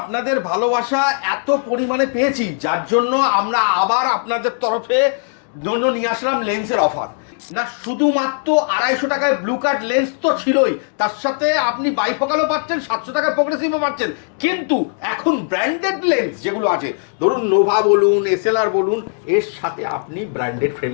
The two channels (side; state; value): right; silent; digital silence